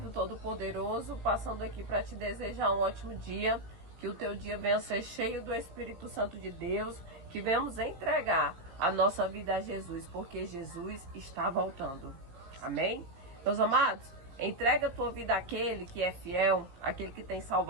Todo-Poderoso, passando aqui para te desejar um ótimo dia, que o teu dia venha ser cheio do Espírito Santo de Deus, que venhamos entregar a nossa vida a Jesus, porque Jesus está voltando. Amém? Meus amados, entrega a tua vida àquele que é fiel, àquele que tem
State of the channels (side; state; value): left; late; 17 ms